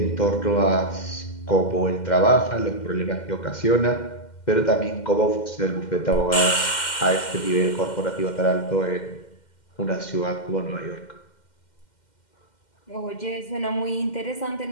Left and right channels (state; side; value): late; right; 2.1 ms